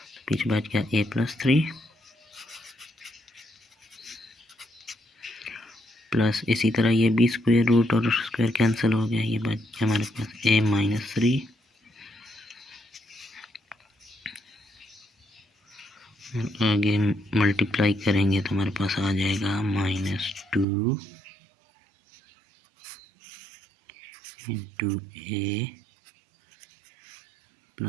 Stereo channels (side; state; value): left; drops out; at 20.7 s